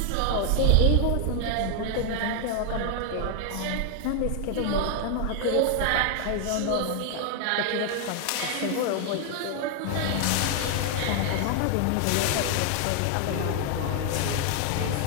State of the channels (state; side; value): different; both; correlation 0.00